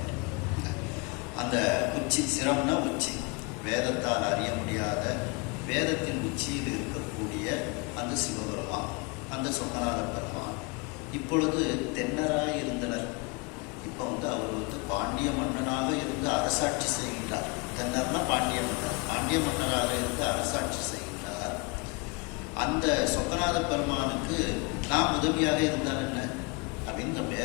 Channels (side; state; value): right; quieter; 29.8 dB